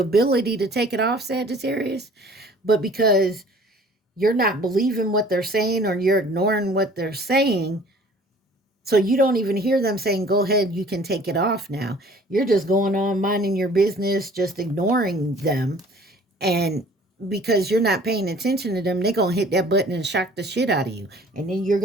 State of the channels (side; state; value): both; normal; correlation 0.51